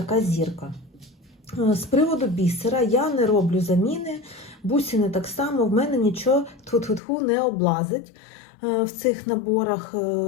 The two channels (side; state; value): right; drops out; at 7.0 s